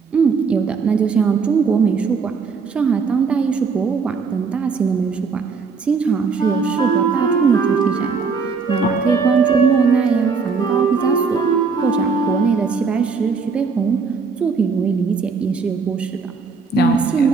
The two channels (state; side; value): quieter; left; 5.1 dB